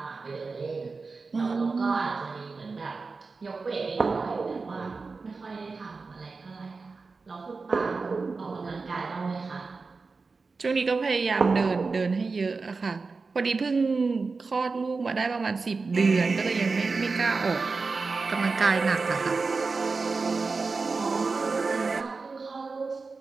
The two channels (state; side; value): quieter; left; 4.2 dB